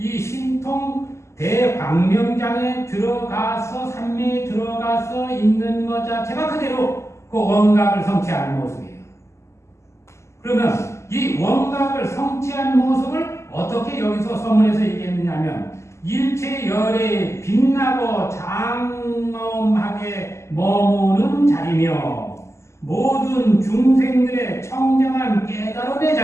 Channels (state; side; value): late; right; 0.13 ms